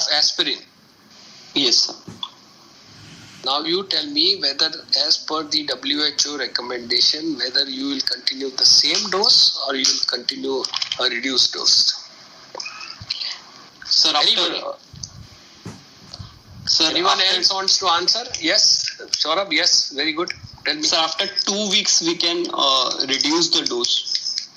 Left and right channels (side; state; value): both; identical; correlation 1.00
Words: aspirin. Yes, sir. Now you tell me whether as per the WHO recommendation, whether you will continue the same dose or you will continue a reduced dose. Sir, Anyone else wants to answer? Yes. Saurabh, yes. Very good. Tell me. Sir, after 2 weeks we can reduce the dose.